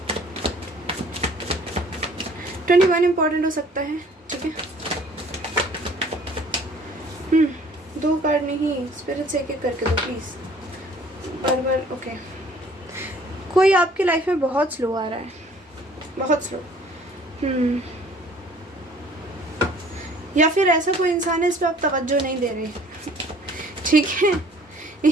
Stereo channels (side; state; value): both; normal; correlation 0.54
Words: 21 इम्पॉर्टेंट हो सकता है, ठीक है। 2 कार्ड नहीं, स्पिरिट से एक करके दो प्लीज़, बार ओके। कोई आपकी लाइफ में बहुत स्लो आ रहा है, बहुत स्लो, या फिर ऐसा कोई इंसान है इस पर आप तवज्जो नहीं दे रहे, ठीक है।